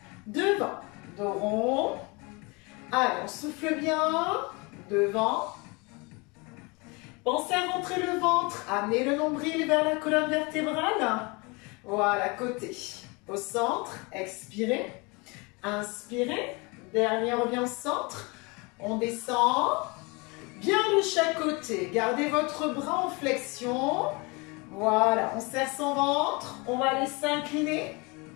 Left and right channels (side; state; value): right; quieter; 27.9 dB